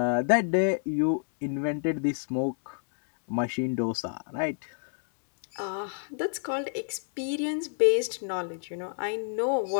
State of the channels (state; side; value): silent; right; digital silence